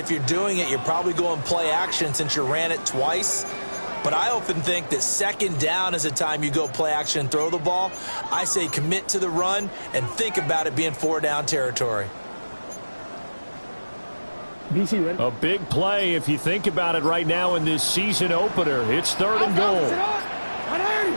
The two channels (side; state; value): both; inverted; correlation -1.00